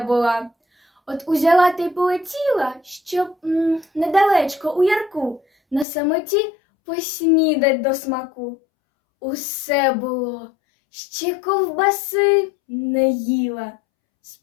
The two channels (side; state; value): right; drops out; at 5.9 s